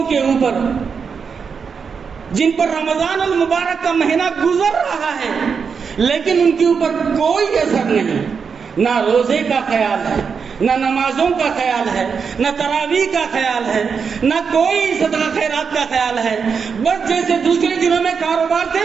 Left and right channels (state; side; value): quieter; left; 6.0 dB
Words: کے اوپر جن پر رمضان المبارک کا مہینہ گزر رہا ہے لیکن ان کے اوپر کوئی اثر نہیں. نہ روزے کا خیال ہے، نہ نمازوں کا خیال ہے، نہ تراویح کا خیال ہے، نہ کوئی صدقہ خیرات کا خیال ہے. بس جیسے دوسرے دنوں میں کاروبار تھے